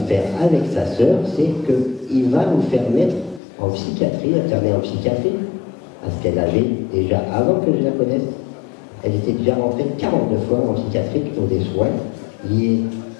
faire avec sa sœur, c'est qu'il va vous faire mettre en psychiatrie, internée en psychiatrie, parce qu'elle avait déjà, avant que je la connaisse, elle était déjà rentrée 42 fois en psychiatrie pour des soins liés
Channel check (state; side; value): drops out; right; at 3.4 s